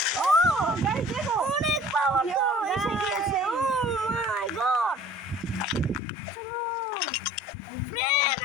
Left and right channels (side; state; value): right; drops out; at 6.0 s